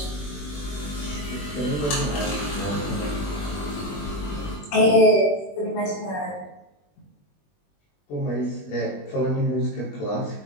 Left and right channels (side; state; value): right; late; 21 ms